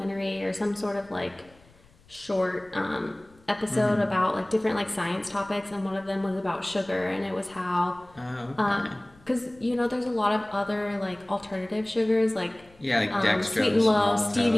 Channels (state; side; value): noise; left; rumble, 28 dB below the sound